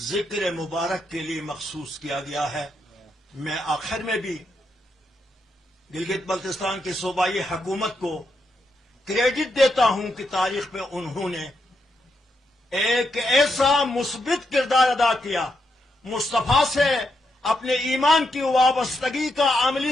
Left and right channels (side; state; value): both; normal; correlation 0.82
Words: ذکر مبارک کے لیے مخصوص کیا گیا ہے. میں آخر میں بھی گلگت بلتستان کی صوبائی حکومت کو کریڈٹ دیتا ہوں کہ تاریخ میں انہوں نے ایک ایسا مثبت کردار ادا کیا، مصطفیٰ سے اپنے ایمان کی وابستگی کا عملی